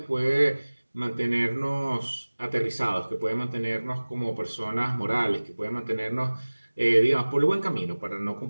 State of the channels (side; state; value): both; inverted; correlation -1.00